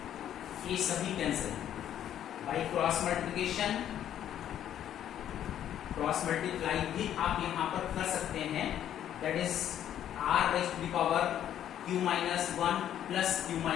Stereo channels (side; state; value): right; quieter; 10.7 dB